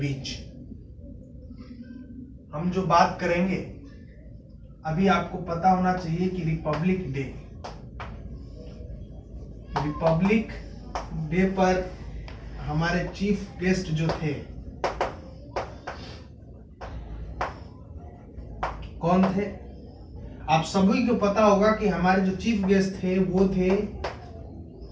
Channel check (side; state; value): both; identical; correlation 1.00